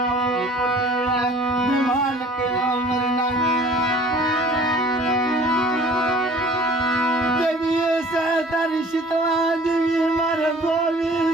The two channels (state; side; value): normal; both; correlation 0.49